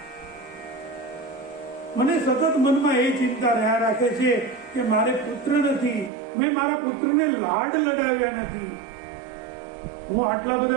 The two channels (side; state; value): left; drops out; at 6.1 s